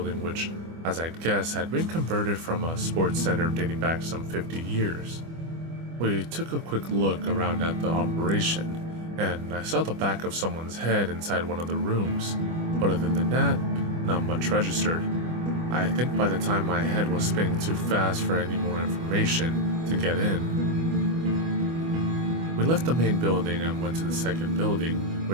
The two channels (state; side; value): late; left; 25 ms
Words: which, as I'd guess, had been converted from a sports center dating back some 50 years. We took a quick look around at the operation, and I saw the back of someone's head inside one of the rooms, but other than that, not much registered. I think by the time my head was spinning too fast for any more information to get in. We left the main building and went to the second building,